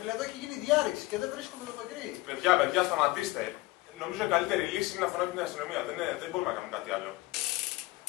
εδώ έχει γίνει διάρρηξη και δεν βρίσκουμε το παγκρί. Παιδιά, σταματήστε. Νομίζω η καλύτερη λύση είναι να φωνάξουμε την αστυνομία. Δεν μπορούμε να κάνουμε κάτι άλλο.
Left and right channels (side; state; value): right; quieter; 20.4 dB